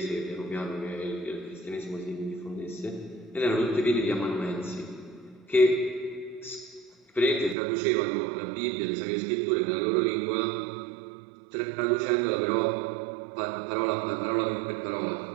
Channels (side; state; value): left; drops out; at 7.6 s